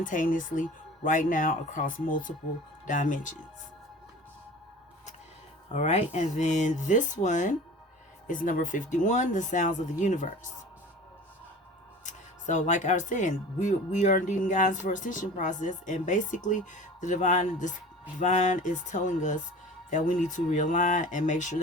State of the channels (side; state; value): both; normal; correlation 0.40